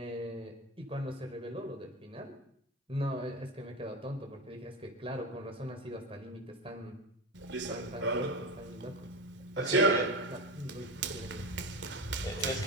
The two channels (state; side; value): normal; both; correlation 0.21